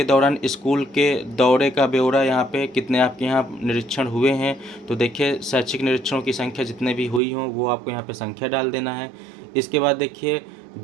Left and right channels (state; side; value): drops out; left; at 7.2 s